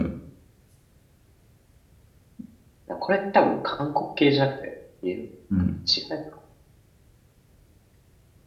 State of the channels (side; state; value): both; identical; correlation 1.00